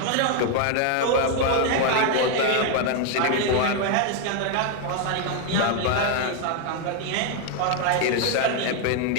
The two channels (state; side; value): different; both; correlation 0.01